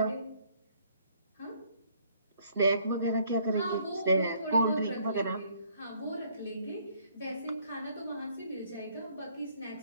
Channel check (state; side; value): inverted; both; correlation -0.64